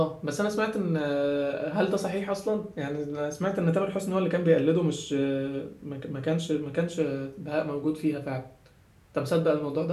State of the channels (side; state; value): both; identical; correlation 1.00